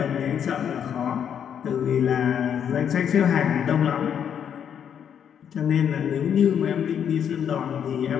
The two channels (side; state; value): right; quieter; 8.5 dB